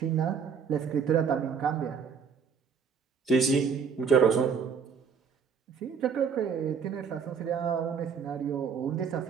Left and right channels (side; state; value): left; quieter; 6.4 dB